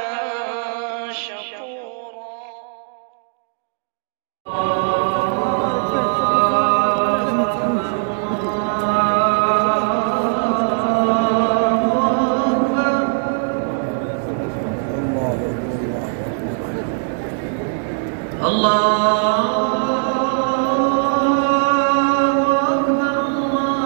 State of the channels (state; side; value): silent; left; 57 dB below the other